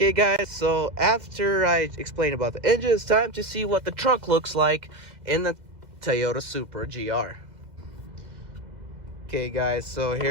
guys, so after I explain about the engine, it's time to see what the trunk looks like in the Toyota Supra GR. Okay, guys, so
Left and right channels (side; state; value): left; late; 2.0 ms